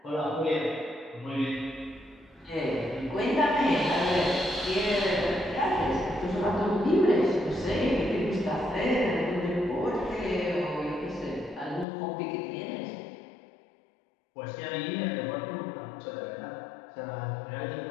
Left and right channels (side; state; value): right; drops out; at 11.9 s